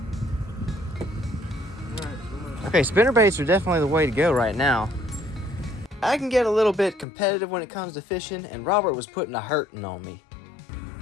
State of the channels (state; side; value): drops out; right; at 7.1 s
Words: Okay, spinnerbaits are definitely the way to go right now. I can get a little bit competitive when it comes to fishing, and Robert was putting a hurting on me.